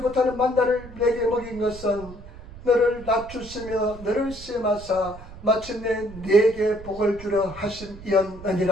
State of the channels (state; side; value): noise; right; rumble, 16 dB below the sound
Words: 못하는 만나를 내게 먹인 것은 너를 낮추시며 너를 시험하사 마침내 내게 복을 주려